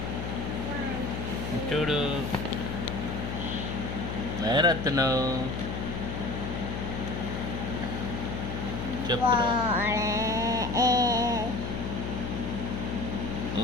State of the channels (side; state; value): left; noise; hum, 4 dB below the sound